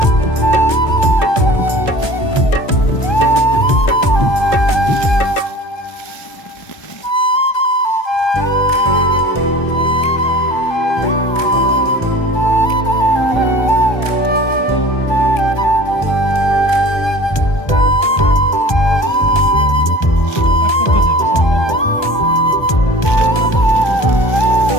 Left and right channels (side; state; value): right; late; 1.2 ms